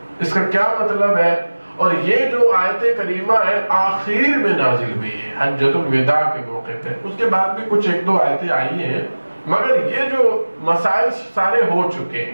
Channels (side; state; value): both; inverted; correlation -1.00